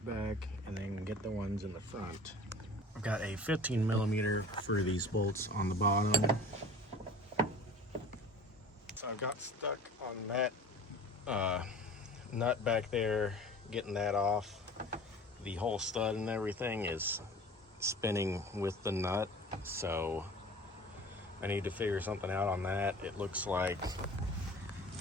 back and then get the ones in the front. I've got a 15mm for these bolts on the bottom. So I've got stuck on that nut back there, getting that off. The whole stud and everything is spinning with the nut, so I need to figure something out on that. It looks like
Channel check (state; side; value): normal; both; correlation 0.42